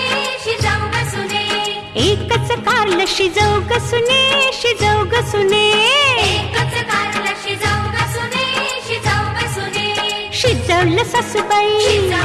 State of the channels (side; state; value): both; identical; correlation 1.00